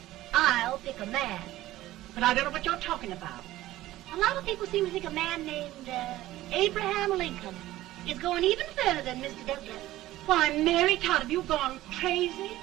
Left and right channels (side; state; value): left; quieter; 15.7 dB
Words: I'll pick a man. But I don't know what you're talking about. A lot of people seem to think a man named Abraham Lincoln is going even further than Mr. Douglas. Why, Mary Todd, have you gone crazy?